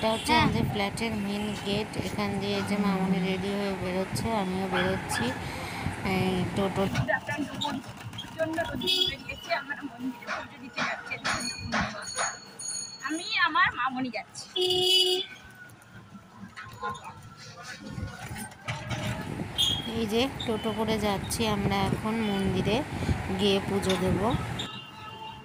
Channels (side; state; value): both; identical; correlation 1.00